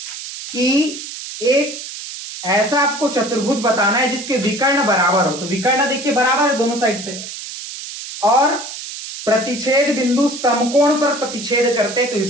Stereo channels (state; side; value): noise; right; hiss, 10 dB below the sound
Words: कि एक ऐसा आपको चतुर्भुज बताना है जिसके विकर्ण बराबर हो। तो विकर्ण देखिए बराबर है दोनों साइड से, और प्रतिच्छेद बिंदु समकोण पर प्रतिच्छेद करते हैं। तो